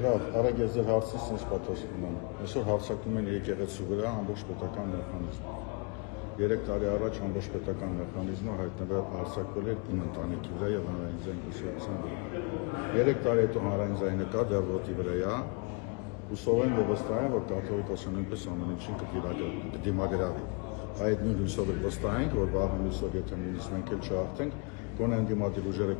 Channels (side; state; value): right; quieter; 33.3 dB